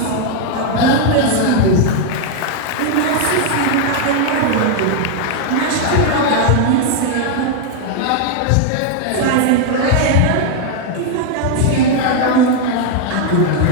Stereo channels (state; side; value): different; both; correlation 0.00